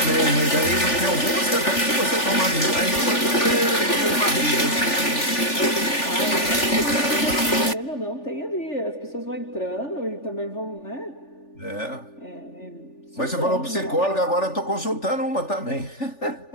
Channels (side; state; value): right; late; 3.4 ms